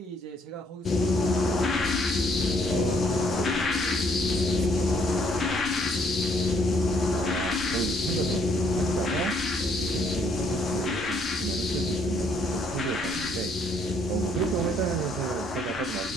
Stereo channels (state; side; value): normal; both; correlation 0.66